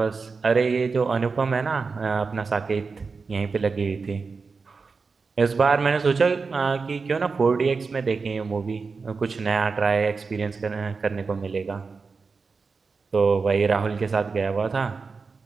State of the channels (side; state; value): left; quieter; 4.6 dB